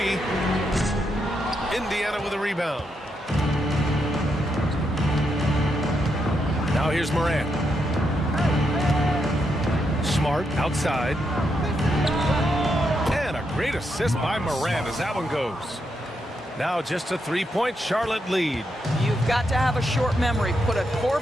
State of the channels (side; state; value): both; normal; correlation 0.81